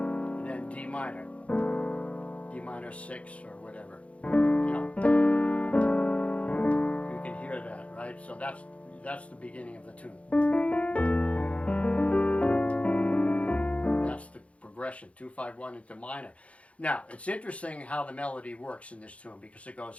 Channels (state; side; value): late; right; 0.063 ms